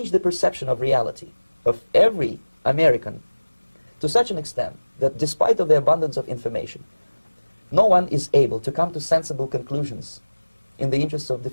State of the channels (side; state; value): both; inverted; correlation -1.00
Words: the perception of reality of every American to such an extent that despite of the abundance of information, no one is able to come to sensible conclusions in the interests of